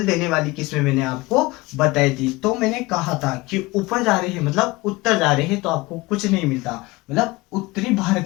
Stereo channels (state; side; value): quieter; right; 21.8 dB